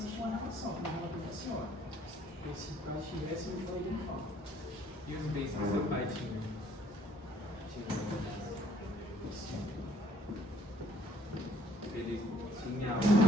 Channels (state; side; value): normal; both; correlation 0.62